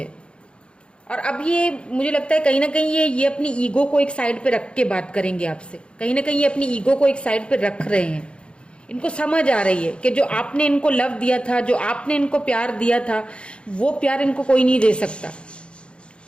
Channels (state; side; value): late; right; 0.056 ms